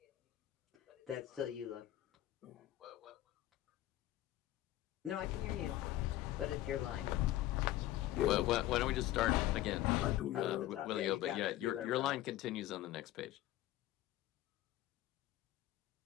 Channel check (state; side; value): quieter; right; 14.8 dB